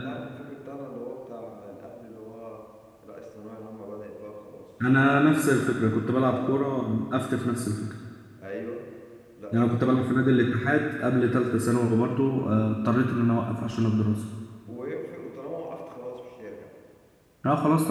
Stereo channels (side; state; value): both; identical; correlation 1.00